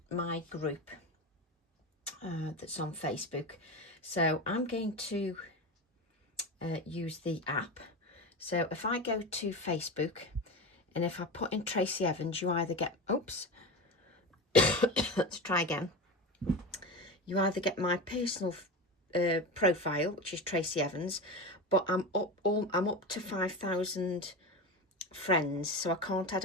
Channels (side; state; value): both; normal; correlation 0.24